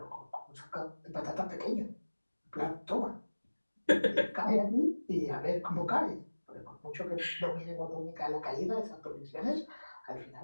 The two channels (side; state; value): both; inverted; correlation -1.00